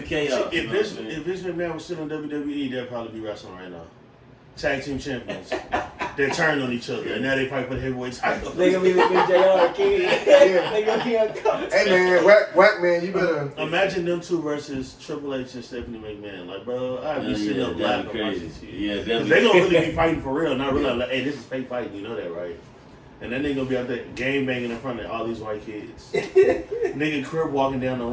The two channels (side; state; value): both; identical; correlation 1.00